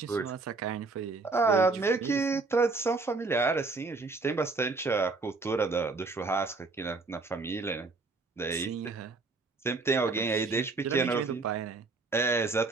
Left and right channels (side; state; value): left; quieter; 3.8 dB